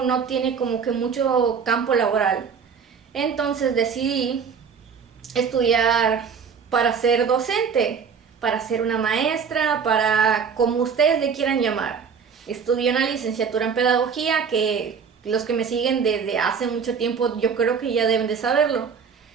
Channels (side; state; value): left; quieter; 6.4 dB